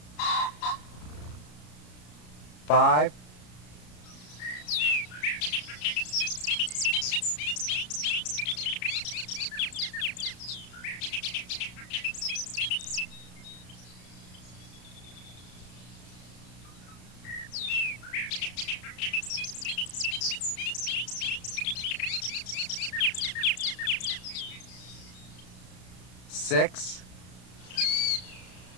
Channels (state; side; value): late; right; 33 ms